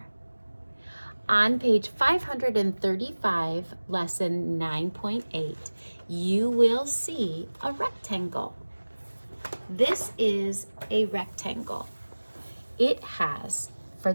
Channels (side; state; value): both; inverted; correlation -1.00